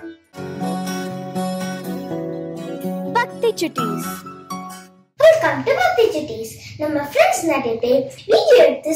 பக்தி சுட்டீஸ். வெல்கம் டு பக்தி சுட்டீஸ். நம்ம ஃப்ரெண்ட்ஸ் நிறைய பேர் வீடியோ எடுத்து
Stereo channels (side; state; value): both; identical; correlation 1.00